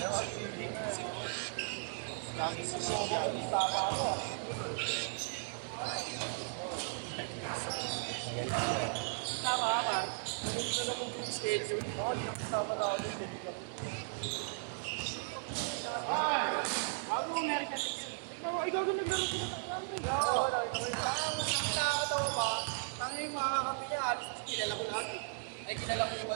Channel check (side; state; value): left; silent; digital silence